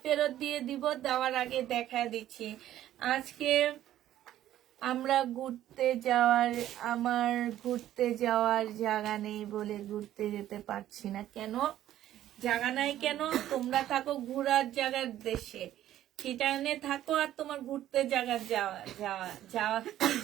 ফেরত দিয়ে দিব, দেওয়ার আগে দেখা দিচ্ছি। আজকে আমরা আমার ঘুরতে যাওয়ার জায়গা নেই বলে ঘুরতে যেতে পারছি না। কেন জায়গা নাই কেন? তোমরা থাকো ঘোরার জায়গার দেশে, চিটাগাঙে থাকো, আর তোমার ঘুরতে জায়গার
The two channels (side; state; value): left; quieter; 12.7 dB